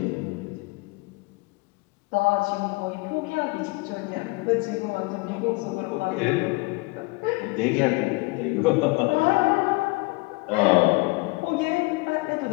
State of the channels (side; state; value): right; quieter; 25.7 dB